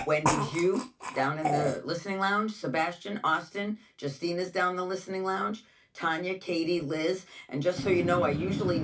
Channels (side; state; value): both; identical; correlation 1.00